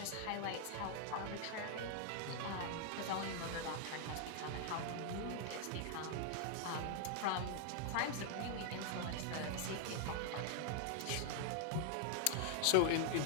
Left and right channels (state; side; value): different; both; correlation 0.00